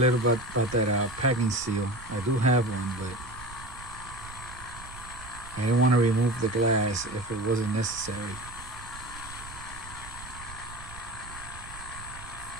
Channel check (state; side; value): noise; right; rumble, 16 dB below the sound